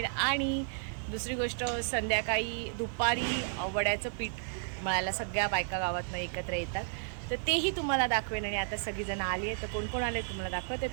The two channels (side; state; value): left; silent; digital silence